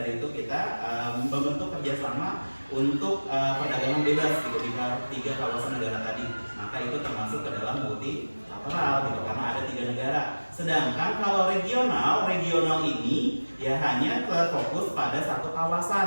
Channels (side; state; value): both; inverted; correlation -1.00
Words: itu kita membentuk kerjasama untuk perdagangan bebas gitu di 3 kawasan negara tadi. Maka itu termasuk ke dalam multilateral gitu, karena ada 3 negara. Sedangkan kalau regional ini ya hanya terfokus pada satu